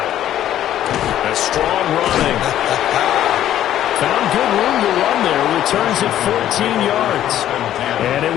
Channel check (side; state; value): right; quieter; 11.9 dB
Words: it. A strong running. Found good room to run there. Returns at 14 yards. And it